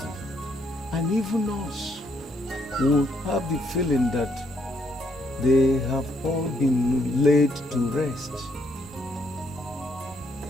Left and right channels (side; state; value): both; normal; correlation 0.73